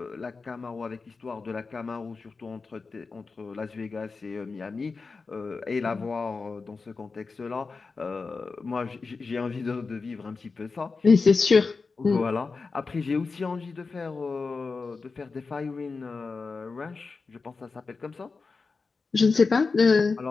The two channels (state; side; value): quieter; right; 4.4 dB